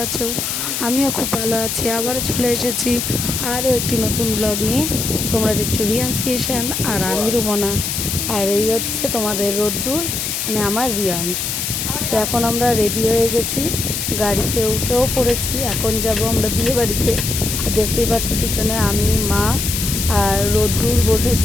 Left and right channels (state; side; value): noise; left; hiss, 2 dB below the sound